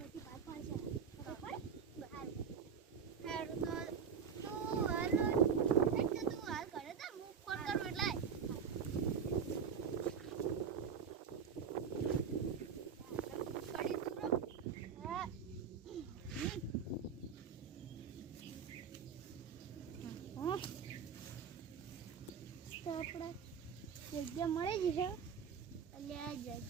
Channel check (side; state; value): left; quieter; 6.8 dB